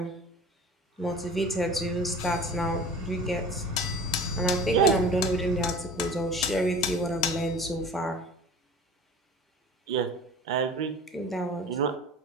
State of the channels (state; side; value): normal; both; correlation 0.40